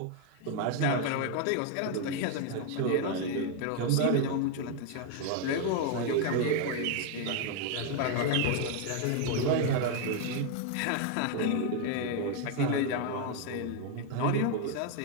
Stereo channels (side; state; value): both; different; correlation 0.01